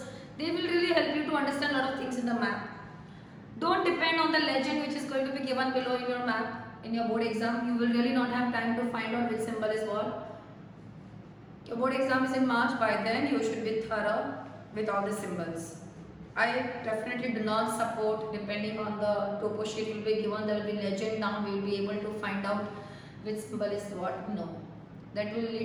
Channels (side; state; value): both; identical; correlation 1.00